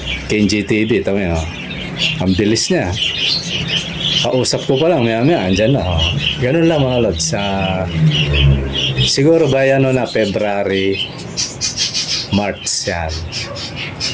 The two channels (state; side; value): identical; both; correlation 1.00